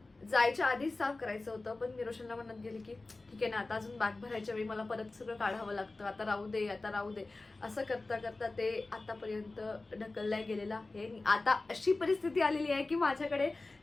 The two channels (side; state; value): right; quieter; 3.3 dB